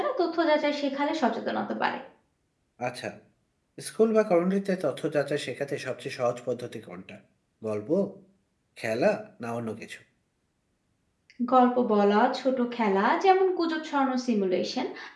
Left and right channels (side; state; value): both; identical; correlation 1.00